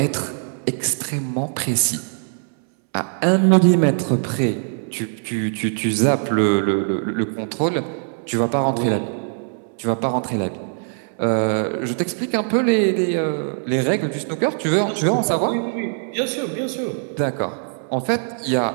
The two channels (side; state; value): left; silent; 65 dB below the other